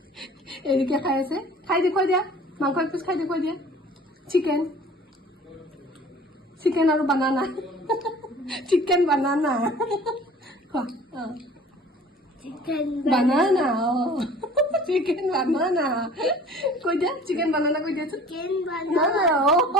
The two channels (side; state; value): both; normal; correlation 0.47